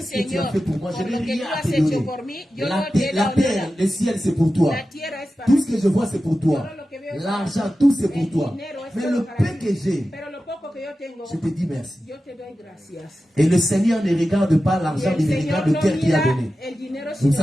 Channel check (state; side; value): normal; both; correlation 0.93